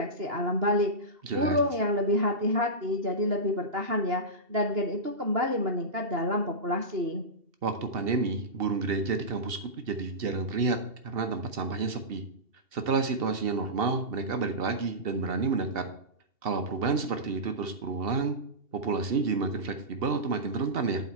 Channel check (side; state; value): left; late; 2.7 ms